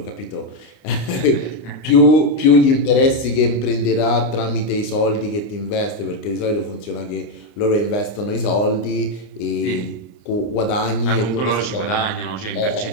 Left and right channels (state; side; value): late; right; 29 ms